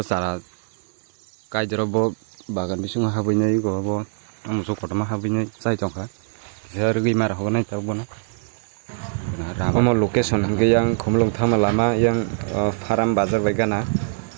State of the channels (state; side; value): silent; left; 57 dB below the other